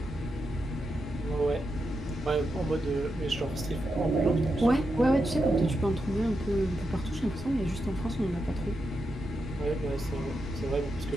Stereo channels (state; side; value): normal; both; correlation 0.86